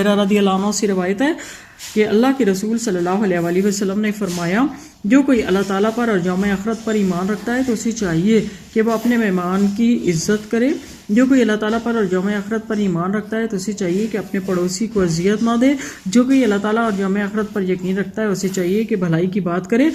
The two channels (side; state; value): both; identical; correlation 1.00